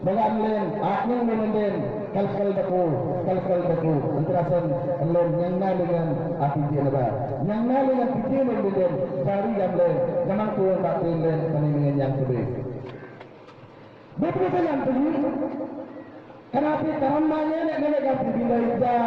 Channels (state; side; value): identical; both; correlation 1.00